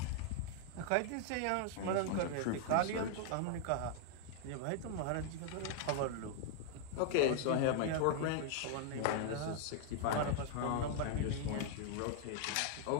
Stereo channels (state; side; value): different; both; correlation 0.00